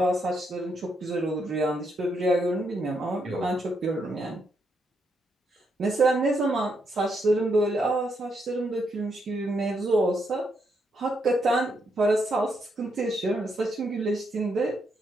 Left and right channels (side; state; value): both; normal; correlation 0.78